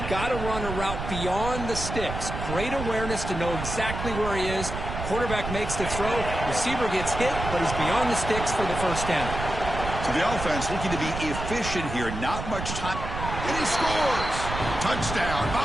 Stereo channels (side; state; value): right; noise; rumble, 6 dB below the sound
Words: got to run a route beyond the sticks. Great awareness to know exactly where he is. Quarterback makes the throw. Receiver gets hit, but he's beyond the sticks for the first down. So the offense looking to be efficient here. Not much time. And he scores! Touchdown,